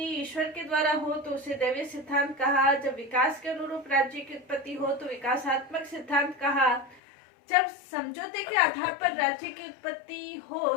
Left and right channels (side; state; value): right; drops out; at 7.0 s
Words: ईश्वर के द्वारा हो तो उसे दैवीय सिद्धांत कहा, जब विकास के अनुरूप राज्य की उत्पत्ति हो तो विकासात्मक सिद्धांत कहा, जब समझौते के आधार पर राज्य की उत्पत्ति हो